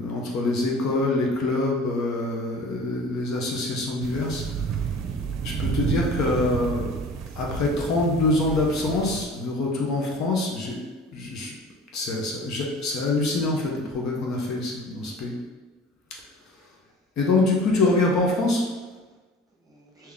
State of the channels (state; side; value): normal; both; correlation 0.42